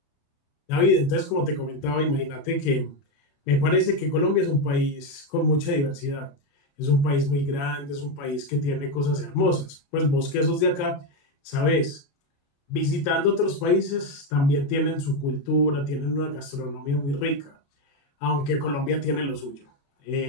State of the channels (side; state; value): right; late; 28 ms